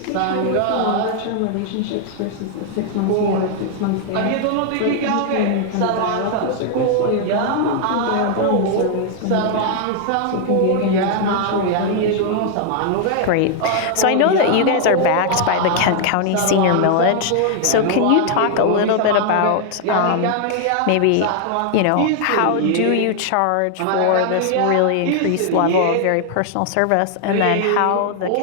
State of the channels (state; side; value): different; both; correlation 0.00